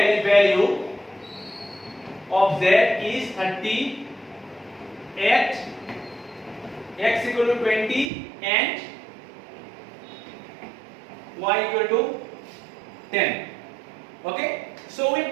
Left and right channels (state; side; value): drops out; left; at 8.1 s